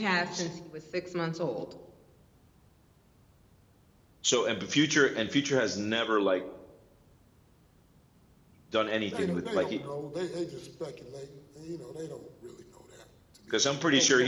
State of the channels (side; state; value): both; identical; correlation 1.00